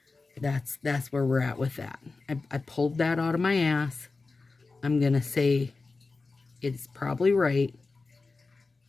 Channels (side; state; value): right; quieter; 3.9 dB